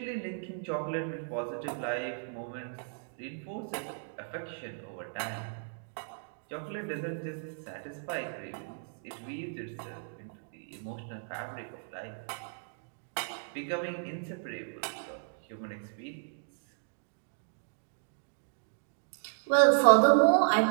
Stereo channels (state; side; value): silent; left; digital silence